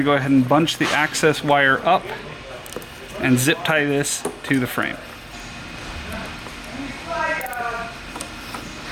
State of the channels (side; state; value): both; identical; correlation 1.00